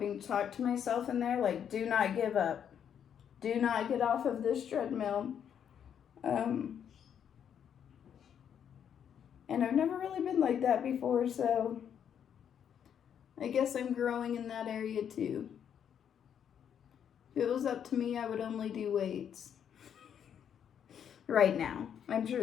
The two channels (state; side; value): quieter; right; 8.6 dB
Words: to talk to myself in there, like, do not give up. Do not get off of this treadmill. And I've never really been like that before, so I guess I'm growing in that area too. If it was up to me, I would only do weights. Right now. I'm sure